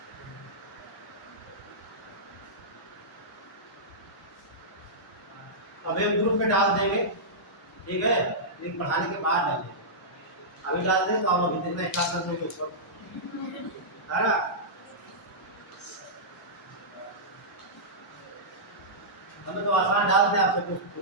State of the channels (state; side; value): normal; both; correlation -0.14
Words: अब एक ग्रुप में डाल देंगे, ठीक है, लेकिन पढ़ाने के बाद डालेंगे। अभी डाल दें तो आप लोग हिंदी में स्टार्ट कर देंगे ऊपर, है ना। हमें तो आसान डाल दें, आप सब